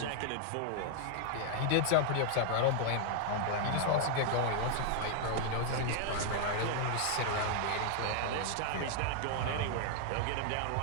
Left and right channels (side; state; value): both; different; correlation 0.00